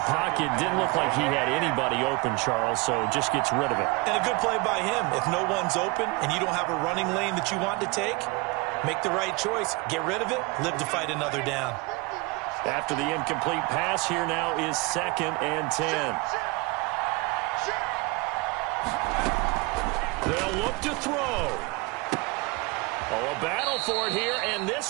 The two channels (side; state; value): left; quieter; 25.5 dB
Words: Didn't look like he had anybody open, Charles, so just gets rid of it. And a good play by him. If no one's open and you don't have a running lane that you want to take, make the right choice. Get rid of it. Live to fight another down. After the incomplete pass, here now is 2nd and 10. They'll look to throw. Oh, a battle for it here, and